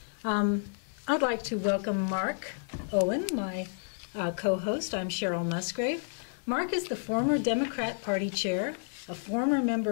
I'd like to welcome Mark Owen, my co-host. I'm Cheryl Musgrave. Mark is the former Democrat Party chair, a former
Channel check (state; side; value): silent; right; 57 dB below the other